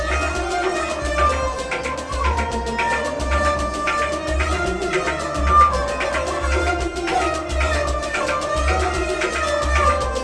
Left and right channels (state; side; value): identical; both; correlation 1.00